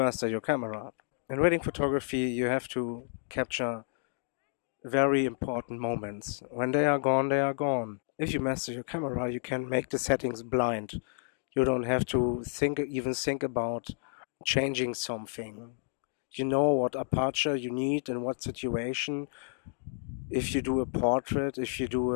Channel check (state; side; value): silent; right; digital silence